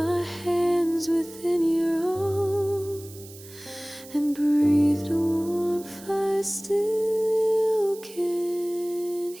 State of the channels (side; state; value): right; noise; hiss, 19 dB below the sound